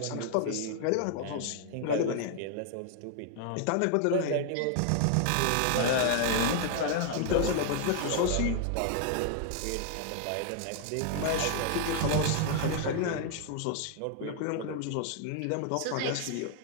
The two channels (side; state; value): both; different; correlation 0.00